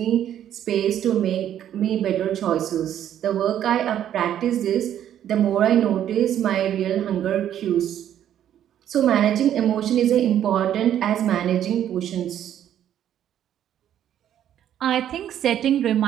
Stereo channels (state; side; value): quieter; left; 10.6 dB